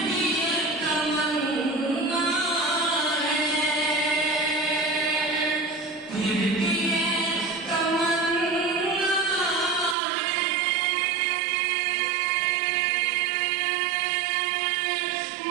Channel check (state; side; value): drops out; left; at 10.0 s